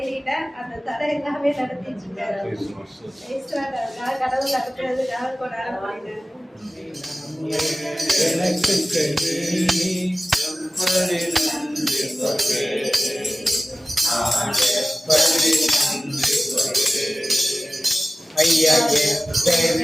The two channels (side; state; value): both; normal; correlation 0.96